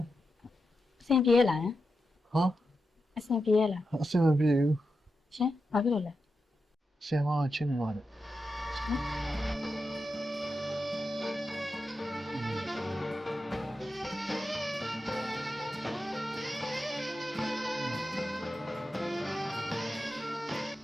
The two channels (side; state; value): both; normal; correlation 0.89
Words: အဆင်ပြေလားဟာအဆင်ပြေလားအဆင်မပြေဘူးရှင်ဘာဖြစ်လို့လဲဆင်မချင်းနေပါတယ်